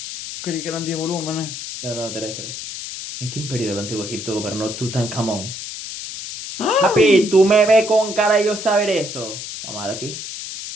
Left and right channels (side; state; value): left; noise; hiss, 8 dB below the sound